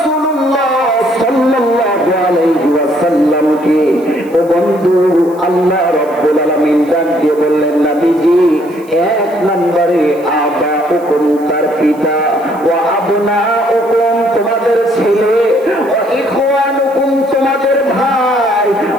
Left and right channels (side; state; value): right; noise; hiss, 27 dB below the sound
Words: সাল্লাল্লাহু আলাইহি ওয়াসাল্লামকে ও বন্ধু আল্লাহ রাব্বুল আলামিন ডাক দিয়ে বললেন, নবীজি এক নম্বরে আবাউকুম, তার পিতা, ওয়া আবনাউকুম, তোমাদের ছেলে, ওয়া ইখওয়ানুকুম, তোমাদের ভাই,